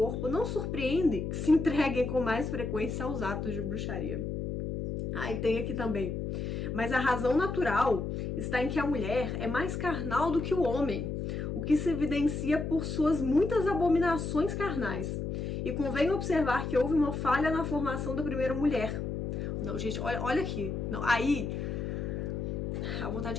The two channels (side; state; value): left; noise; hum, 3 dB below the sound